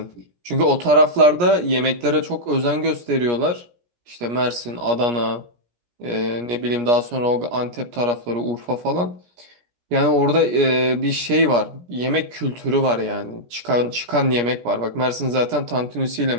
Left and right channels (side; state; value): left; late; 17 ms